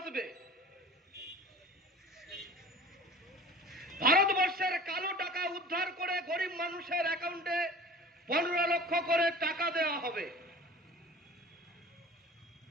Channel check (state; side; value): normal; both; correlation 0.41